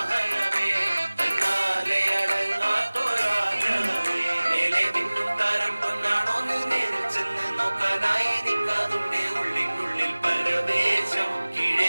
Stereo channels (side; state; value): both; inverted; correlation -1.00